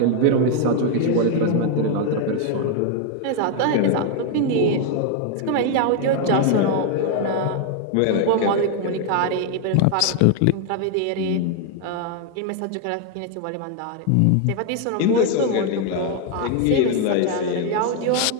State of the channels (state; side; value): different; both; correlation 0.01